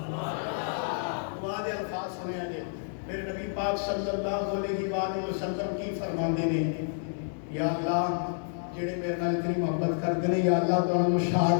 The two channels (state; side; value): silent; right; digital silence